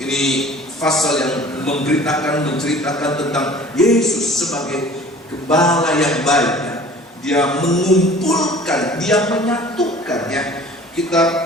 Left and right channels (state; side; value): normal; both; correlation 0.47